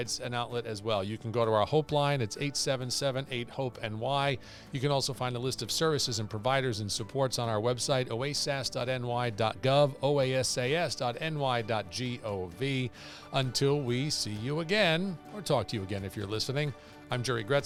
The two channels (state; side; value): identical; both; correlation 1.00